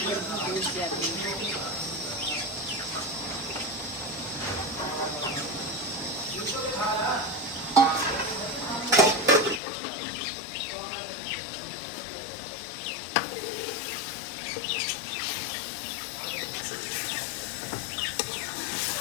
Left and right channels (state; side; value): drops out; right; at 9.6 s